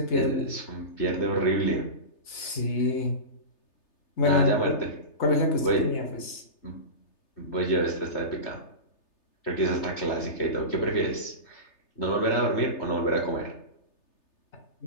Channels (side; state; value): right; late; 3.3 ms